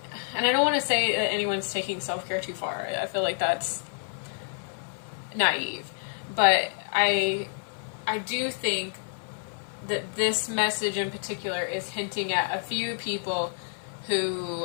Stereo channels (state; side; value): silent; right; 56 dB below the other